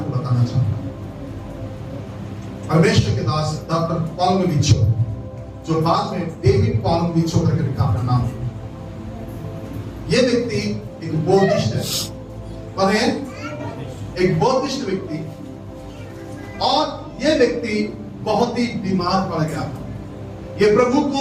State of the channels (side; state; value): both; identical; correlation 1.00